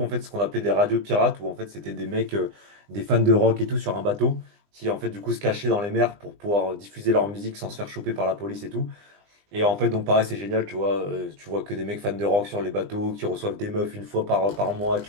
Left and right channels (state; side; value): late; left; 20 ms